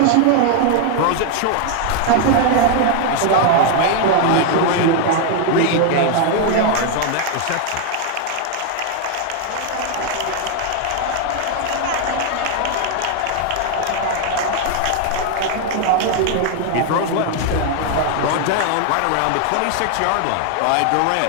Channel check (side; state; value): both; different; correlation 0.00